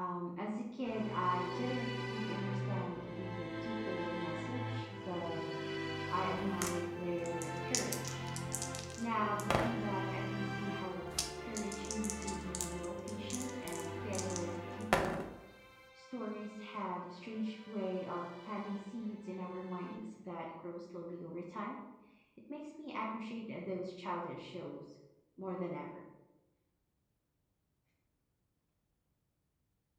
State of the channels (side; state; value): both; identical; correlation 1.00